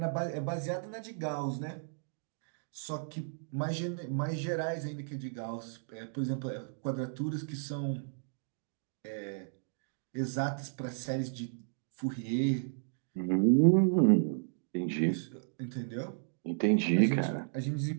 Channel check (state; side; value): silent; left; digital silence